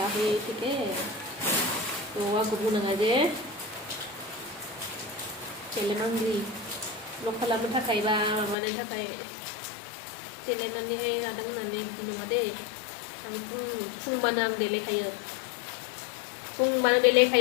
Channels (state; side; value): drops out; right; at 8.6 s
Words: kita, तो aku bunuh aja, celen angry, lokal apa tak kaya ba, mana tak kaya, celen nanti hay kadang nanti di mana deh, aku pun mana ang dele kaya, pun mana dele